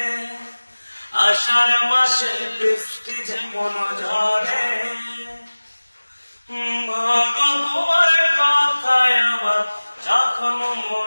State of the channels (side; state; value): both; inverted; correlation -1.00